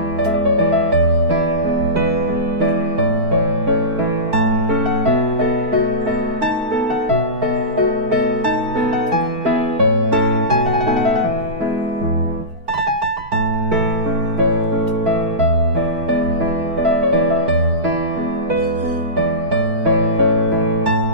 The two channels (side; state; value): left; late; 4.4 ms